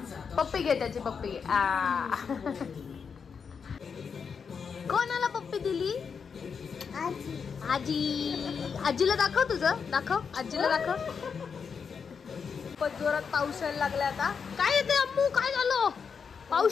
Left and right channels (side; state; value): right; quieter; 6.1 dB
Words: पप्पी घे त्याची. पप्पी घे. कोणाला पप्पी दिली. आजी. आजीला दाखव. तुझं दाखव. आजीला दाखव. खूपच जोरात पाऊस यायला लागला आता. काय येते अम्मू. काय झालं.